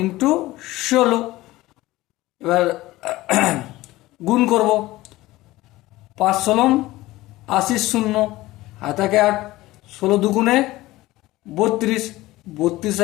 16। এবার গুণ করব, 5 16 80 শূন্য, হাতাকে 8, 16×2 = 32, 32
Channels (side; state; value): right; quieter; 18.1 dB